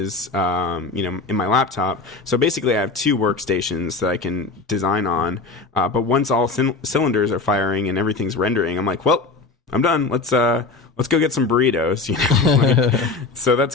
in my laptop. So basically I have two workstations that I can design on. But once all cylinders are firing and everything's rendering, I'm like, well, I'm done. Let's go get some burritos. So that's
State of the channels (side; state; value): right; quieter; 3.9 dB